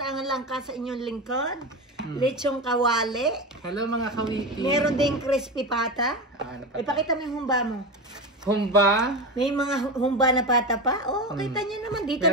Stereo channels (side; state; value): both; normal; correlation 0.21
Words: lang ka sa inyong lingkod. Lechong kawali. Hello mga kawiti! Meron ding crispy pata. Ipakita mo yung humba mo. Humba? May mga humba na pata pa. Oh, kita nyo naman. Dito